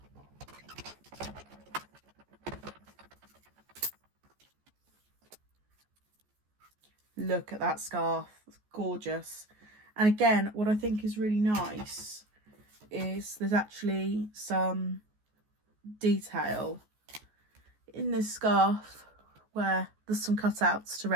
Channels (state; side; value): late; left; 14 ms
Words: Look at that scarf, it's gorgeous. And again, what I think is really nice is there's actually some detail in this scarf where there's some cutouts to